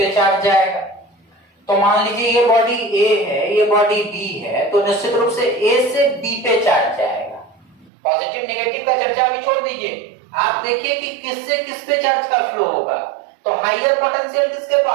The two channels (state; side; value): drops out; left; at 7.9 s